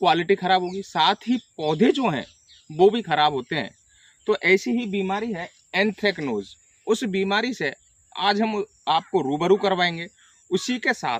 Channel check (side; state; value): both; identical; correlation 1.00